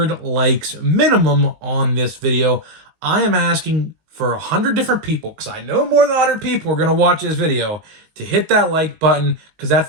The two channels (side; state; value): left; late; 19 ms